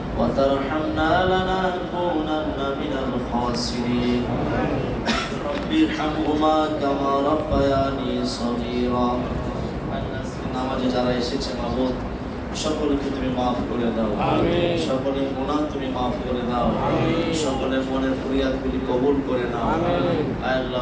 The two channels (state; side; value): identical; both; correlation 1.00